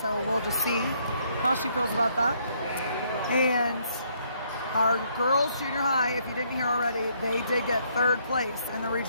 we'll just see how she feels about that. And our girls junior high, if you didn't hear already, they did get 3rd place in the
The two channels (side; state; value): both; inverted; correlation -0.69